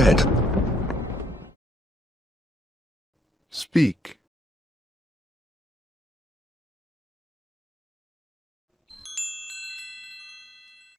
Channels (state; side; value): normal; both; correlation 0.70